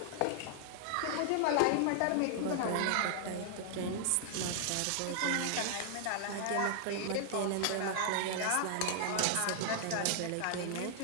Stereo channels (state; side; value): different; both; correlation 0.00